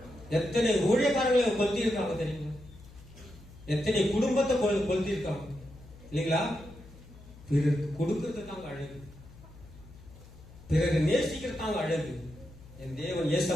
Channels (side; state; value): left; noise; hum, 20 dB below the sound